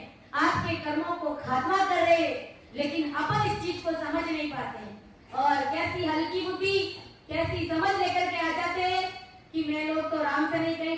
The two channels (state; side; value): identical; both; correlation 1.00